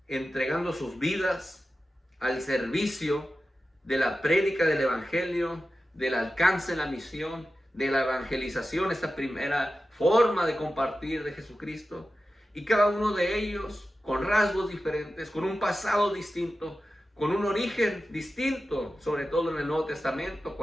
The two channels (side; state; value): both; normal; correlation 0.93